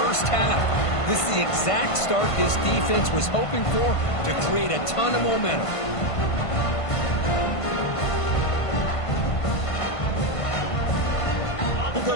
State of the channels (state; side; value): late; right; 1.5 ms